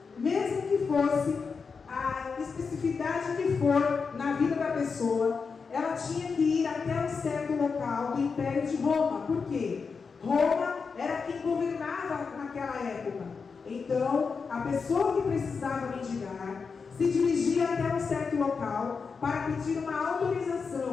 Mesmo que fosse a especificidade que for na vida da pessoa, ela tinha que ir até um certo local do Império de Roma. Por quê? Roma era quem governava naquela época. Então, a pessoa que precisava mendigar se dirigia até um certo local para pedir uma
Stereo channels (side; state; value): right; quieter; 5.2 dB